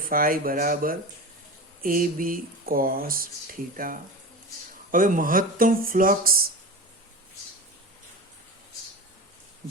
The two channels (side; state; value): both; normal; correlation 0.28